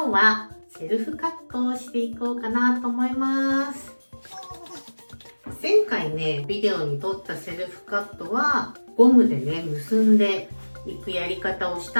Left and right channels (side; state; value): both; inverted; correlation -1.00